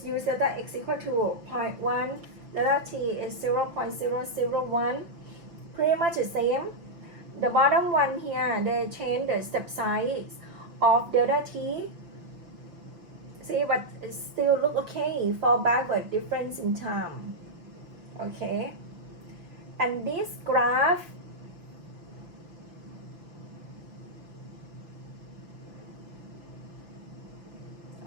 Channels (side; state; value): left; late; 5.9 ms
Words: use delta x equal to 0.1, delta t is 0.001, pretty much the same. The bottom one here, they change the step size of delta t. See, but it still look okay for backward difference in time. Okay. And this graph,